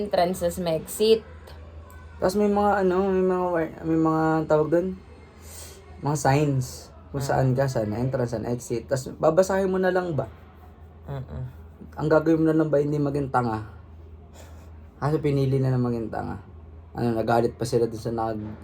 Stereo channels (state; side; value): identical; both; correlation 1.00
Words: tas may exit. Tapos may mga tawag doon. Mga signs. Kung saan ka, saan na entrance, saan na exit. Tapos babasahin mo na lang ba? Ang gagawin mo na lang ba hindi maging tanga? Kasi pinili na maging tanga. Nagalit pa sila dun sa